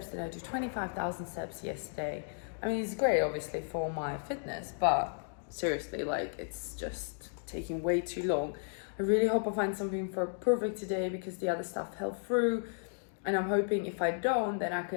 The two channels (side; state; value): right; silent; digital silence